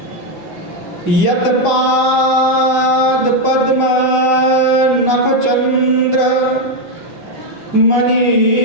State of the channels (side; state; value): left; late; 5.0 ms